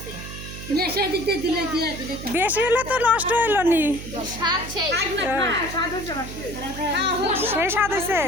বেশি হলে তো নষ্ট হইল নি সেই স্বাদ হয়েছে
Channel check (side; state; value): right; noise; hum, 10 dB below the sound